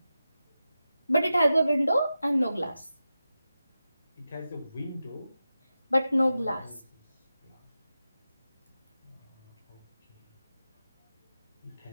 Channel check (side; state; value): both; inverted; correlation -0.92